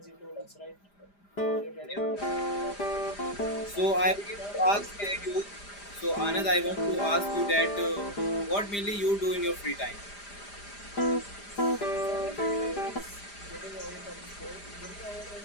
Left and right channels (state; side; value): late; right; 4.9 ms